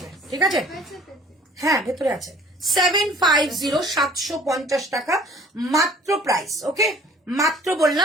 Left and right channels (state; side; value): normal; both; correlation 0.52